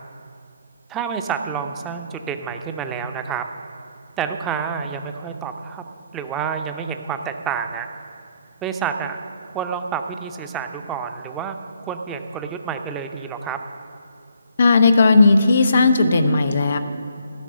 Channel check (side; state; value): both; inverted; correlation -0.69